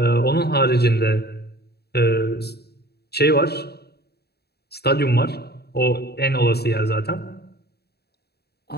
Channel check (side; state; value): right; late; 0.47 ms